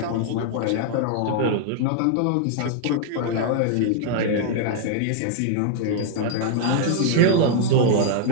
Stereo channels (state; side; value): different; both; correlation -0.01